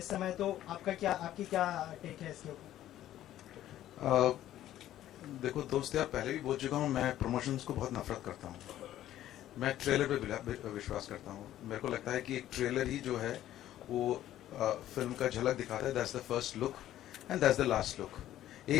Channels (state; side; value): quieter; right; 12.9 dB